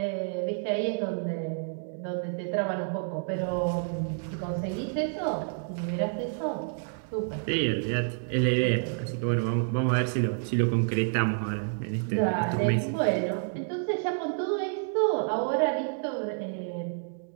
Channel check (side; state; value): left; silent; digital silence